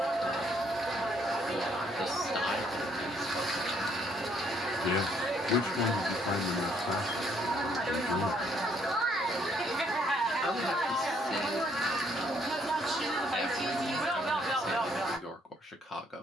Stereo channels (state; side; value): normal; both; correlation 0.68